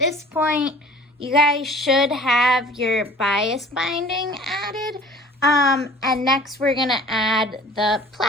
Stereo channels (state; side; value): normal; both; correlation 0.47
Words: point, you guys should have your bias binding added. And next we're gonna add the